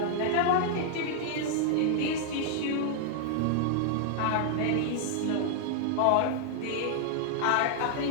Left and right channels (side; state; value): both; different; correlation -0.01